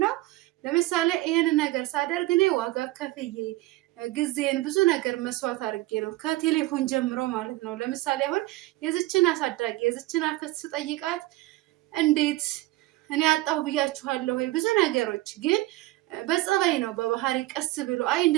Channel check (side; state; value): left; quieter; 18.6 dB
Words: ለምሳሌ ይሄን ነገር ሳደርግ እኔ ዋጋ ከፍዬ ጊዜን ብዙ ነገር መስዋዕት አድርጌ ነው ከቴሌፎን ጀምሮ ማለት ነው። ለምሳሌ አሁን የዝችን አሳዳጊ የዝችን አክስት ስጠይቃት እንዴት እኔ አጣሁ ብያችኋለሁ ወይ ብዙ ነገሮች፣ ግን በጸባይ ነው በባህሪ ቀስ ብሎ አይ